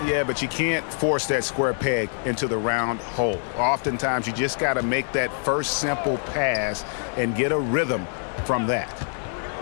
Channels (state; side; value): silent; right; 61 dB below the other